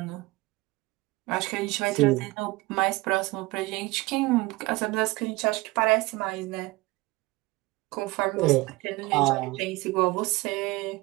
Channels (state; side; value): quieter; left; 21.7 dB